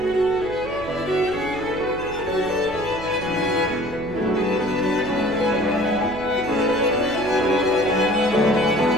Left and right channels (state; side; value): noise; right; hum, 15 dB below the sound